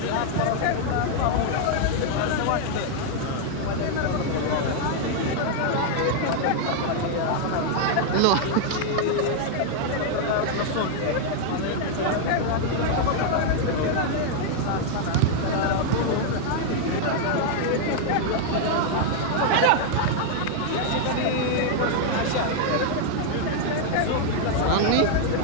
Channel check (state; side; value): different; both; correlation 0.00